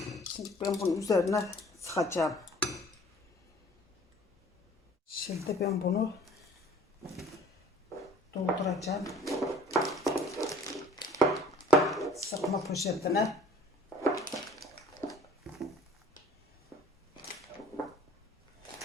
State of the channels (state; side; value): normal; both; correlation 0.52